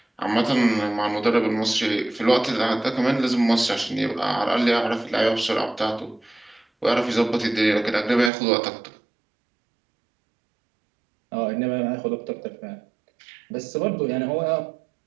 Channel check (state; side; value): drops out; left; at 8.3 s